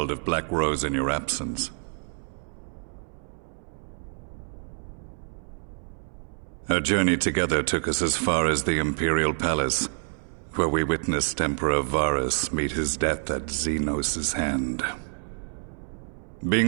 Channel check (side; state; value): left; silent; 60 dB below the other